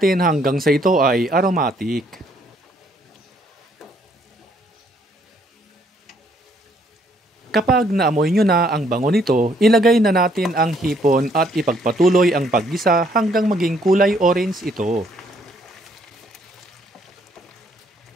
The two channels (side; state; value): both; normal; correlation 0.67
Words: hanggang sa ito ay aromatic. Kapag naamoy nyo na ang bango nito, ilagay na natin ang hipon at ipagpatuloy ang paggisa hanggang maging kulay orange ito.